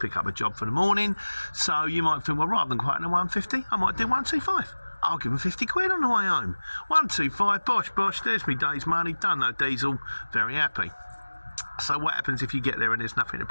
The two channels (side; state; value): both; inverted; correlation -1.00